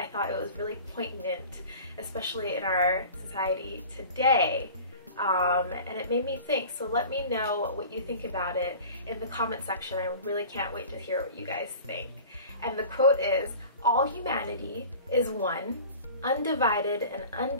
thought it was really poignant, especially in our society today. And it made me think. So let me know what you think about it in the comment section. I really can't wait to hear what you guys think. And the quote is, "All humanity is one, undivided and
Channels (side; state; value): both; inverted; correlation -0.41